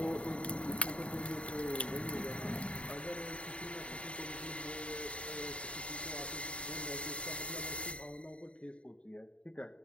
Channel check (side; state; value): right; late; 0.061 ms